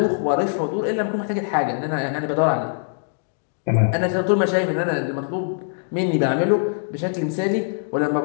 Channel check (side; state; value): right; silent; digital silence